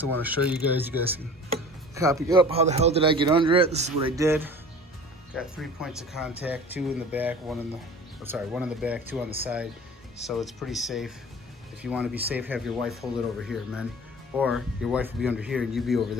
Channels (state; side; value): normal; both; correlation 0.41